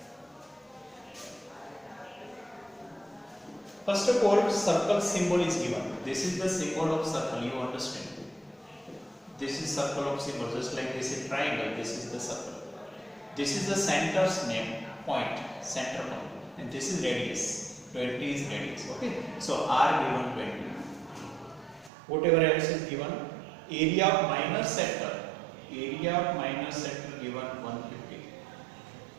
First of all, circle symbol is given. This is the symbol of circle, you understand. This is circle of symbol, just like this is triangle, this is the circle. This is the center's name, point, center point. And this is radius, 20 is radius, okay. So r given 20. Whatever else is given, area of minor sector given 150.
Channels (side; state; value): left; drops out; at 21.9 s